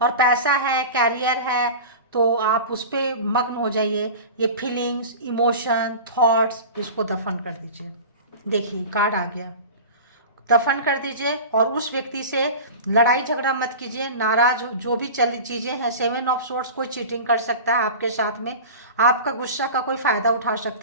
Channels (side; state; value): both; inverted; correlation -0.33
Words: और पैसा है, कैरियर है, तो आप उस पर मग्न हो जाइए। ये फीलिंग्स, इमोशन, थॉट्स, इसको दफन कर दीजिए। देखिए, कार्ड आ गया, दफन कर दीजिए। और उस व्यक्ति से लड़ाई झगड़ा मत कीजिए। नाराज जो भी चली चीज़ें हैं, 7 ऑफ सोर्ड्स, कोई चीटिंग कर सकता है आपके साथ में, आपका गुस्सा का कोई फ़ायदा उठा